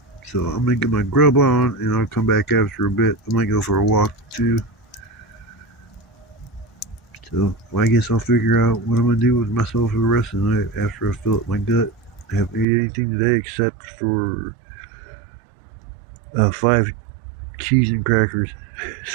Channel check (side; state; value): left; drops out; at 12.7 s